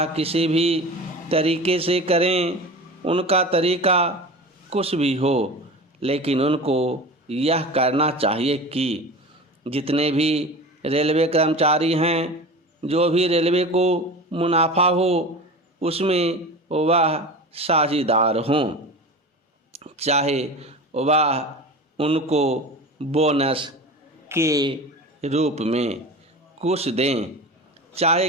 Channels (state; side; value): normal; both; correlation 0.32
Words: किसी भी तरीके से करें, उनका तरीका कुछ भी हो, लेकिन उनको यह करना चाहिए कि जितने भी रेलवे कर्मचारी हैं, जो भी रेलवे को मुनाफा हो उसमें वह साझेदार हों, चाहे वह उनको बोनस के रूप में कुछ दें, चाहे